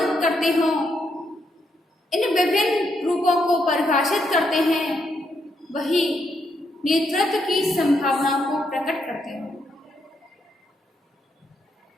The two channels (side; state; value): both; normal; correlation 0.78